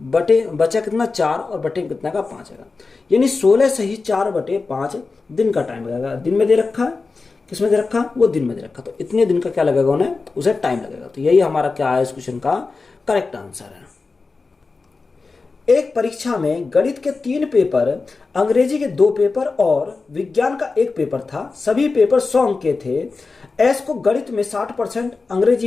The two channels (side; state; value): right; quieter; 4.1 dB